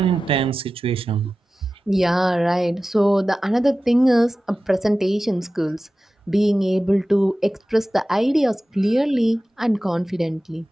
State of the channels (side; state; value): both; normal; correlation 0.95